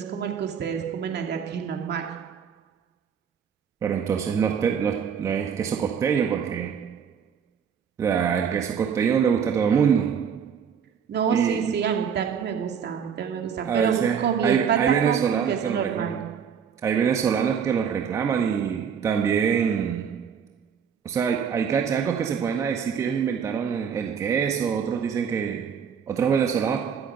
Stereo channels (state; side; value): quieter; left; 7.3 dB